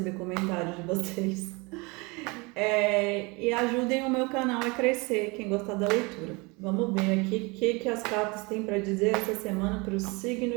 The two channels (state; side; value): quieter; left; 27.1 dB